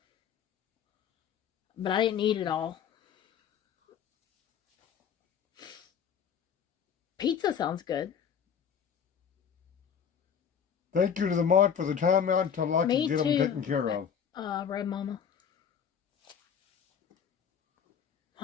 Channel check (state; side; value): quieter; right; 7.7 dB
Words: But I didn't eat it all. Pizza sounds good. Thank you to the mod for the timeout until I Me can get too. them taken care of. Red Mama.